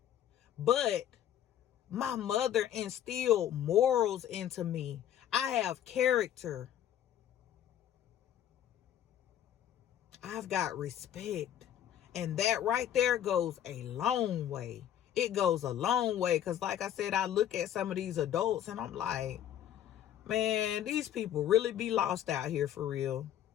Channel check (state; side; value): quieter; right; 10.9 dB